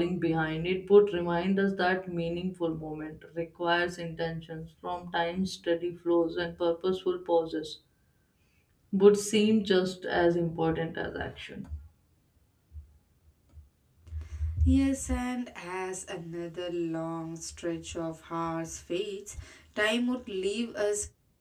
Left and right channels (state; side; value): identical; both; correlation 1.00